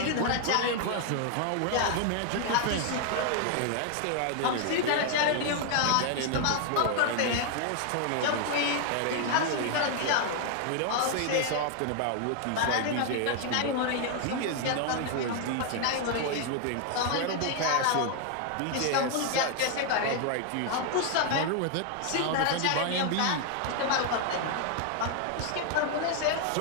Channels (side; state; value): both; different; correlation 0.00